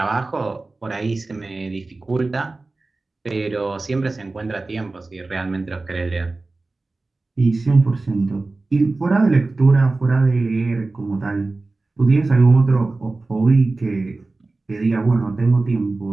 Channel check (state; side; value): quieter; left; 3.4 dB